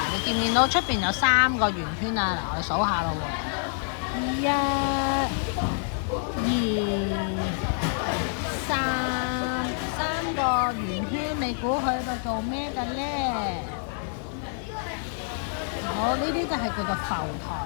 你見唔見到出邊有3個圓圈啊？嗱，我哋數下咯喎。1、2、3個圓圈，你估佢喺度做咩嘅呢？好，呢啲就係叫做浮台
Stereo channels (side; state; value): right; silent; 60 dB below the other